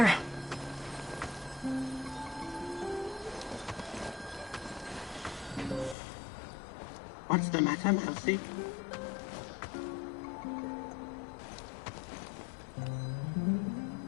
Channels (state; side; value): drops out; right; at 6.0 s